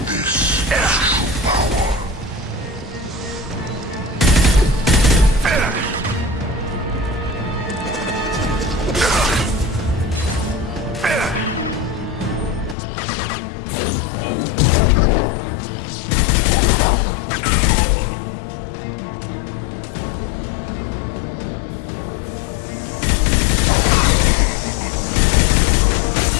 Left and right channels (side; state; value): right; drops out; at 12.8 s